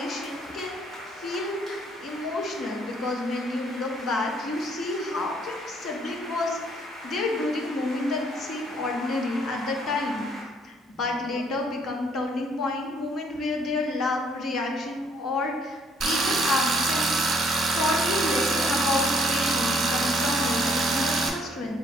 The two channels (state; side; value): normal; both; correlation 0.64